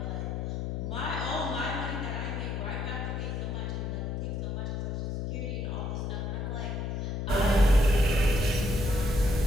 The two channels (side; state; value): left; noise; hum, 2 dB below the sound